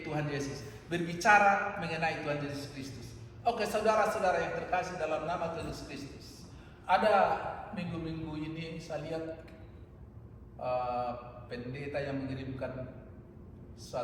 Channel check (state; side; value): identical; both; correlation 1.00